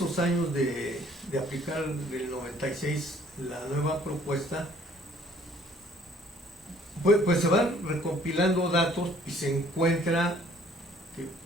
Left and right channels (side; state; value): both; normal; correlation 0.58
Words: años de aplicar del 96 la nueva propuesta, pues se van recopilando datos y se encuentra que